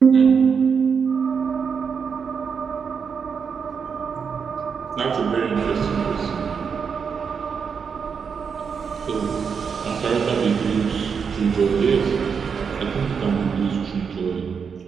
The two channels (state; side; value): quieter; left; 6.2 dB